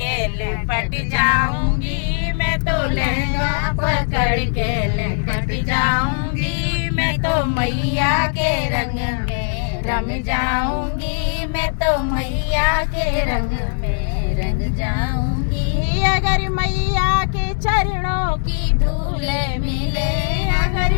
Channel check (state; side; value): silent; right; digital silence